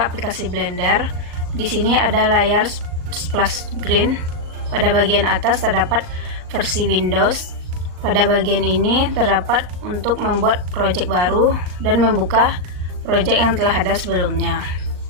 aplikasi Blender. Di sini ada layar splash screen. Pada bagian atas terdapat versi Windows. Pada bagian ini terdapat untuk membuat project baru dan membuka project yang telah ada sebelumnya.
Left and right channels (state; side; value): late; left; 38 ms